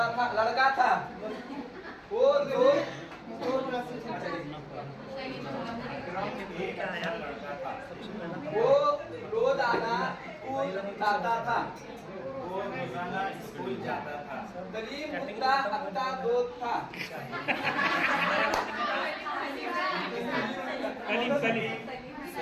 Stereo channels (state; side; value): identical; both; correlation 1.00